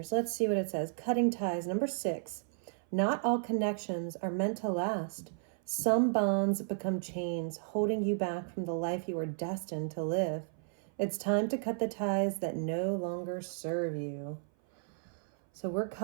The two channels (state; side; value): silent; left; 55 dB below the other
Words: Let's see what it says. Cutting ties. Number 6. Not all connections are meant to last. Some bonds become chains, holding you back from the life you are destined to live. It's time to cut the ties that no longer serve you. So we're